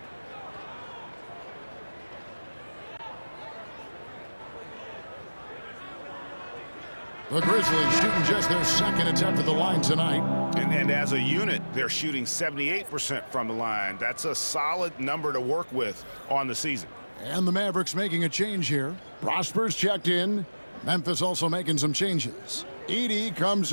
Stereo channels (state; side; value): inverted; both; correlation -1.00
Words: The Grizzlies shooting just their second attempt at the line tonight. And as a unit, they're shooting 78% from the line. That's a solid number to work with on the season. And the Mavericks making a change here. Prosper's checked in. Memphis also making some changes. Edey